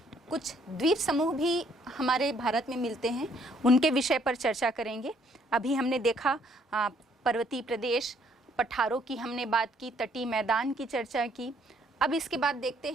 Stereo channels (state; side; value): normal; both; correlation 0.66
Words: कुछ द्वीप समूह भी हमारे भारत में मिलते हैं, उनके विषय पर चर्चा करेंगे। अभी हमने देखा पर्वतीय प्रदेश, पठारों की हमने बात की, तटीय मैदान की चर्चा की। अब इसके बाद देखते